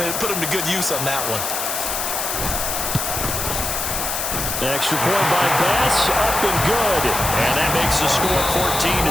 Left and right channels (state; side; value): noise; left; hiss, 2 dB below the sound